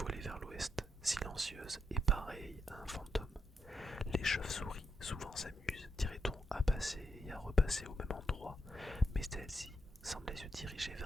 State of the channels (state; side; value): normal; both; correlation 0.82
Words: vers l'ouest, silencieuse et pareille à un fantôme. Les chauves-souris souvent s'amusent, dirait-on, à passer et à repasser au même endroit, mais celle-ci semblait se diriger